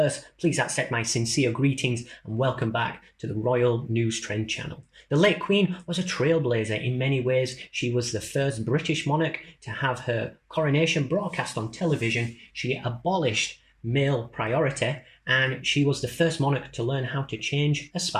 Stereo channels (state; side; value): identical; both; correlation 1.00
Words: Please accept my sincere greetings and welcome back to the Royal News Trend channel. The late Queen was a trailblazer in many ways. She was the first British monarch to have her coronation broadcast on television. She abolished male priority, and she was the first monarch to learn how to change a